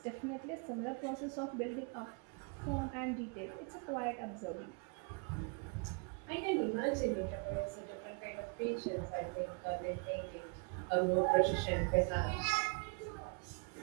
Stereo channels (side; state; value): left; quieter; 35.0 dB